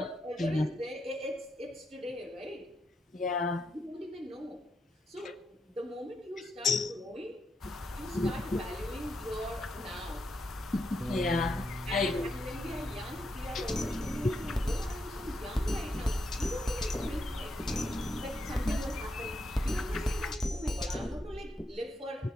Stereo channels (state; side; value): normal; both; correlation 0.82